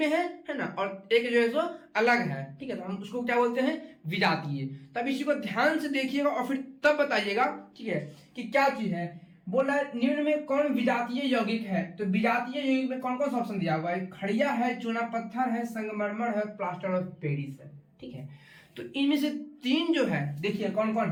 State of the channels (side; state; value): both; identical; correlation 1.00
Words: है ना, और एक जो है सो अलग है, ठीक है। तो हम उसको क्या बोलते हैं, विजातीय। तब इसी को ध्यान से देखिएगा और फिर तब बताइएगा, ठीक है, कि क्या चीज है। बोला निम्न में कौन विजातीय यौगिक है, तो विजातीय यौगिक में कौन कौन सा ऑप्शन दिया हुआ है, खड़िया है, चूना पत्थर है, संगमरमर है, प्लास्टर ऑफ पेरिस है, ठीक है। तो इनमें से 3 जो है देखिए कौन कौन